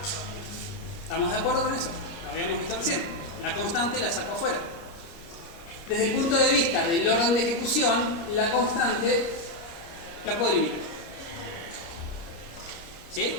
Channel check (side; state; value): right; late; 30 ms